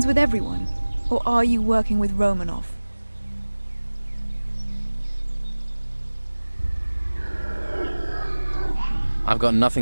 with everyone? Or are you working with Romanov? I've got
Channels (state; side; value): inverted; both; correlation -1.00